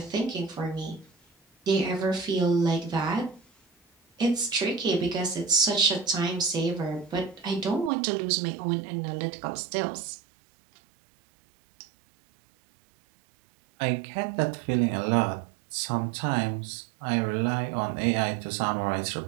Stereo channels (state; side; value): drops out; left; at 7.9 s